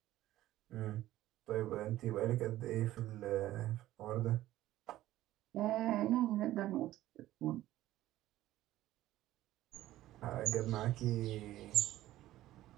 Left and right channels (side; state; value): left; quieter; 14.8 dB